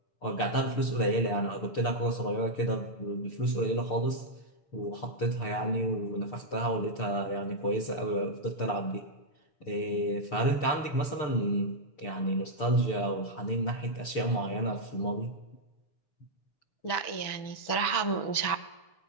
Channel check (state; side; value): late; right; 6.9 ms